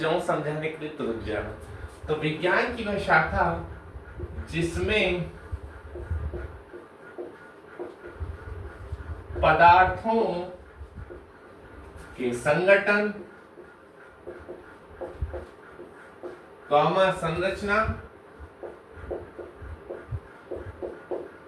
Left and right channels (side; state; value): both; identical; correlation 1.00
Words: समझाने के लिए तो रुक जाना। तो विज्ञान की वह शाखा जिसमें पदार्थों के संगठन, संरचना,